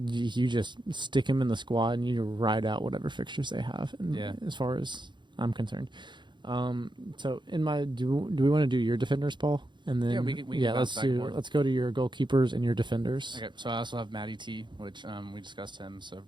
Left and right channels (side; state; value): left; late; 0.22 ms